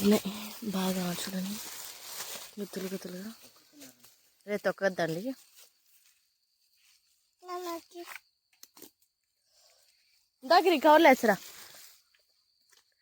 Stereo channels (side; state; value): both; identical; correlation 1.00